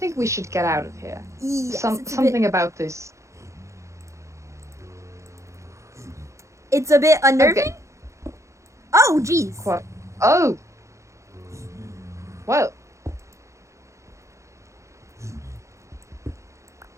we should get out of here. Yes, it's Something about this. It's a bit unnerving. Okay. Oh, jeez. What? Oh. Well.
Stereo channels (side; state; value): left; late; 0.14 ms